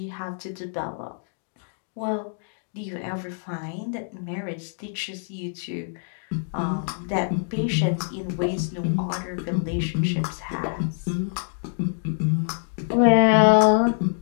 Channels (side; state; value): right; silent; digital silence